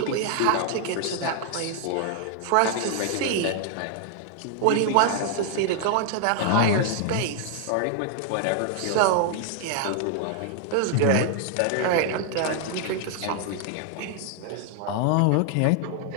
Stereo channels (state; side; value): different; both; correlation 0.00